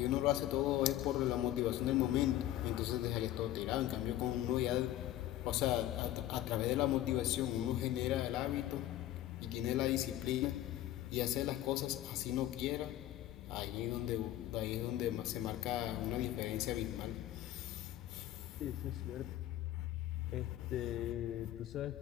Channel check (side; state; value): right; quieter; 13.7 dB